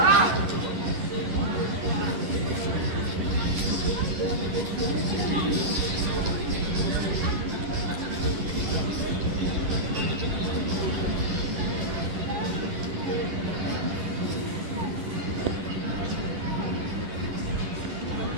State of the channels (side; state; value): left; late; 10 ms